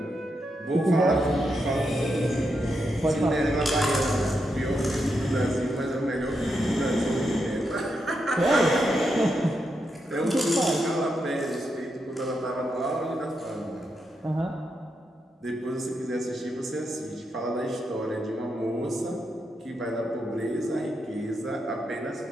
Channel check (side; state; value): both; normal; correlation 0.83